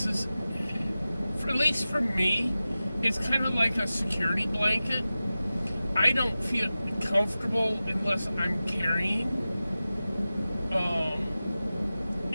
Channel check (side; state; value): both; inverted; correlation -0.95